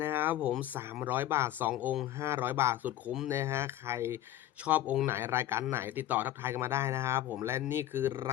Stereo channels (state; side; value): quieter; right; 13.6 dB